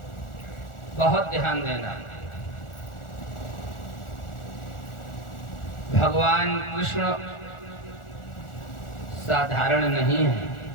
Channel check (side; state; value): right; late; 1.4 ms